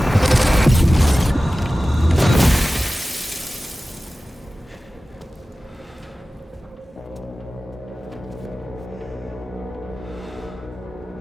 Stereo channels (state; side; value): normal; both; correlation 0.96